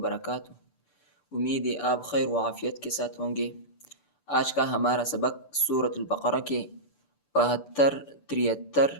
امید ہے آپ خیر و عافیت کے ساتھ ہوں گے۔ آج کا ہمارا سبق سورۃ البقرہ کے 72، 73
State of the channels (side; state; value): right; late; 6.8 ms